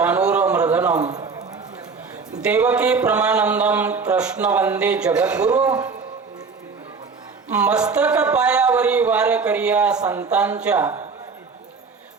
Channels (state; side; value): quieter; left; 4.9 dB